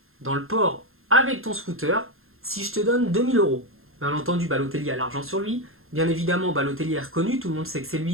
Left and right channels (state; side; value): late; left; 0.61 ms